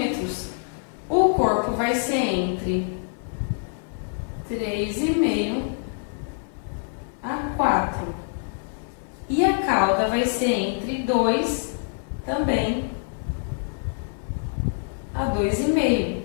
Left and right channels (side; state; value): right; silent; 61 dB below the other